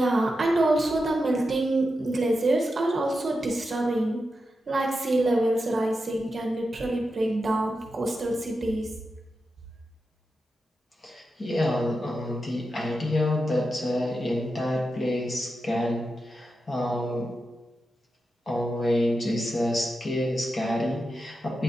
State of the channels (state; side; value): normal; both; correlation 0.89